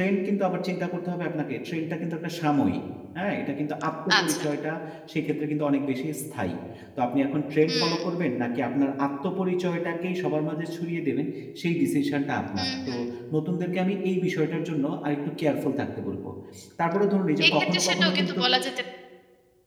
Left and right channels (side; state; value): both; identical; correlation 1.00